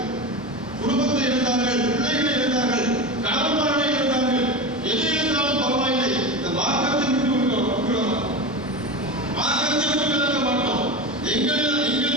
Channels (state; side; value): normal; both; correlation 0.24